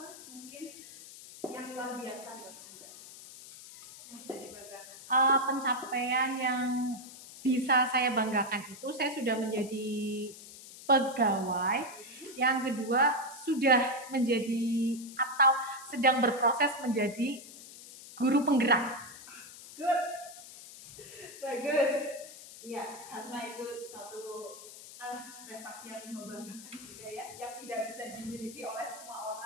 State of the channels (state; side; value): noise; left; hiss, 16 dB below the sound